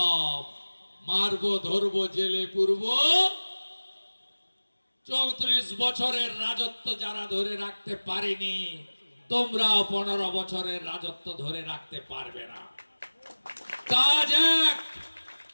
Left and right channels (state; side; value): inverted; both; correlation -1.00